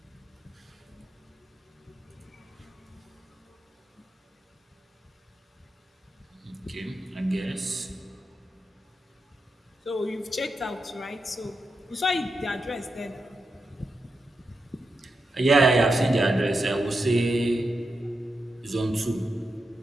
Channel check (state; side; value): normal; both; correlation 0.87